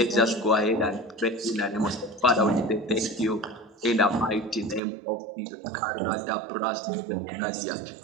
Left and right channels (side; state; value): left; drops out; at 4.8 s